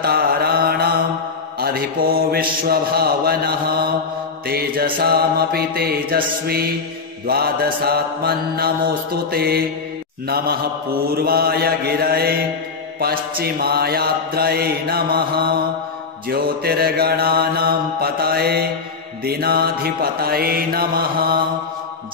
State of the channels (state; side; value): quieter; right; 4.6 dB